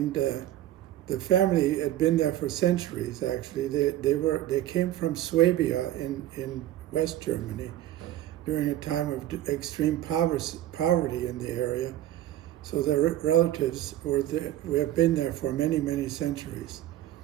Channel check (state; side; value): quieter; left; 13.3 dB